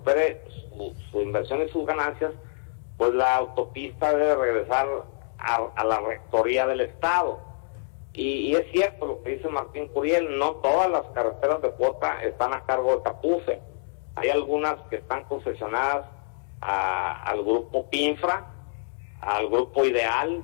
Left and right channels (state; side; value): silent; right; digital silence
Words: su inversión y sus ganancias, pues la autopista debe regresar a la rectoría del Estado. Y es cierto lo que dice Martín Curiel, no todas las carreteras de cuota están a cargo de Capufe. Hay algunas que están concesionadas al grupo Pinfra, al grupo Ideal